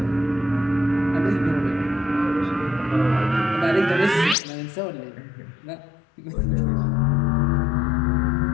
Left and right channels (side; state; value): right; drops out; at 4.4 s